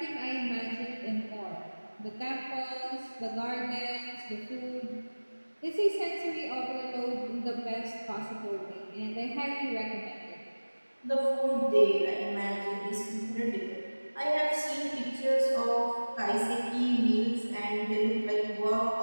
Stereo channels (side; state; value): both; inverted; correlation -1.00